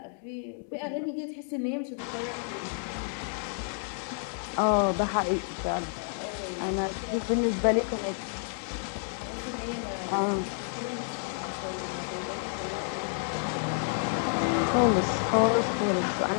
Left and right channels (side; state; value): right; silent; digital silence